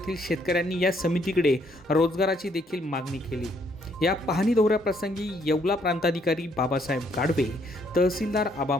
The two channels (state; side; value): normal; both; correlation 0.69